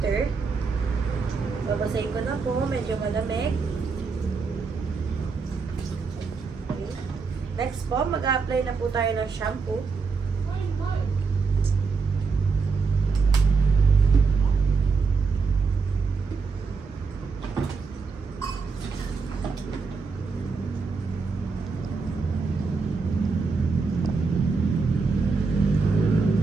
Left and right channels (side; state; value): left; quieter; 4.7 dB